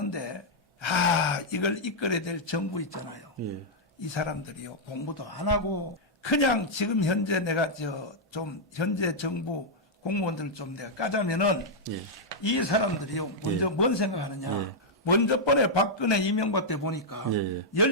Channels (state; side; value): normal; both; correlation -0.06